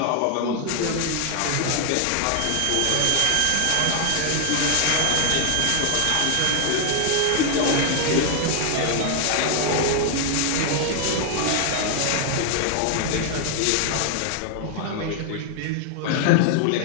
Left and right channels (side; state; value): both; different; correlation 0.00